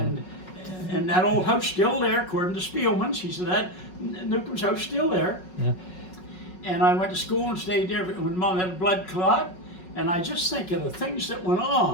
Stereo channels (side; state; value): right; late; 5.4 ms